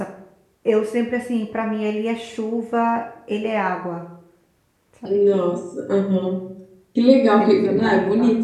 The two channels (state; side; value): identical; both; correlation 1.00